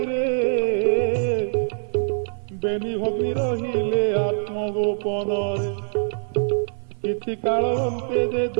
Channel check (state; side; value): silent; left; 57 dB below the other